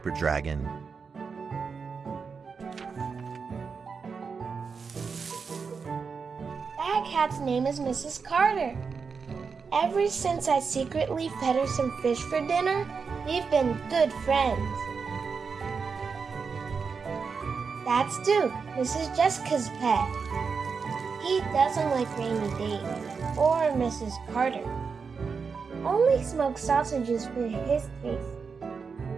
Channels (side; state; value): left; quieter; 5.4 dB